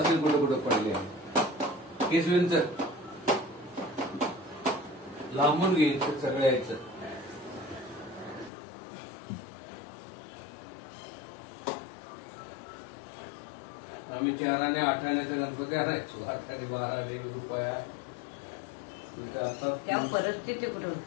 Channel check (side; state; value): right; drops out; at 8.5 s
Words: कुठं कुठं पडले केसवींच लांबून घ्यायचं सगळं यायचं. आम्ही 4 आणि 8 आण्याचा गणपती आणायचो. 8 आणि 12 रुपया. तेव्हा परिस्थिती कुठे